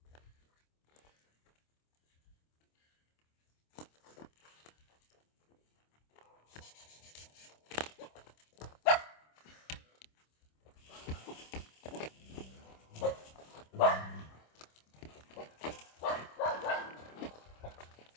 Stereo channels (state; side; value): late; right; 26 ms